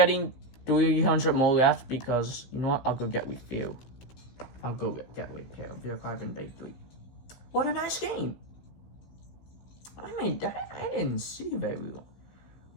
300 more left because, you know what? I'll go get refuel. I'll go get refuel. Vehicle arriving bay 3. What a nice game. I mean, I didn't see very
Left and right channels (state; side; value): late; right; 15 ms